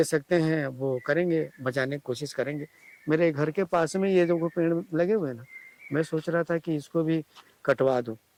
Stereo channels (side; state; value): both; identical; correlation 1.00